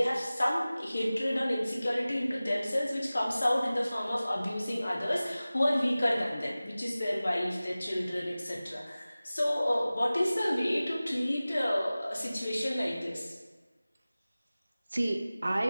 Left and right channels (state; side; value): inverted; both; correlation -0.98